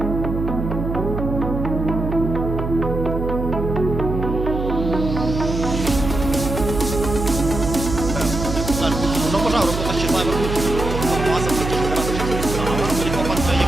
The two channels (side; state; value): right; noise; hum, 4 dB below the sound